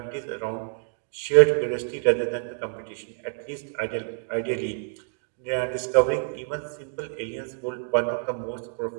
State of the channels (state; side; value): silent; left; 60 dB below the other